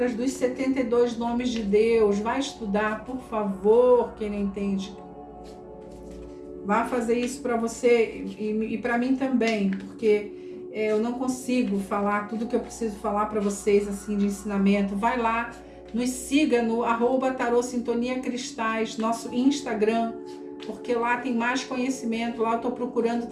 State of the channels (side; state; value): both; identical; correlation 1.00